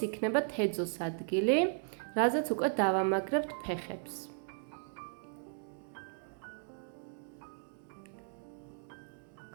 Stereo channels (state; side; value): silent; left; 54 dB below the other